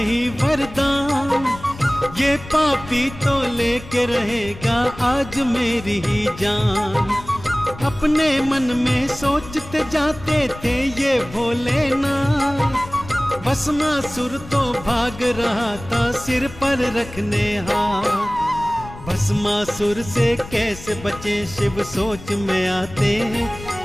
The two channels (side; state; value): left; noise; rumble, 15 dB below the sound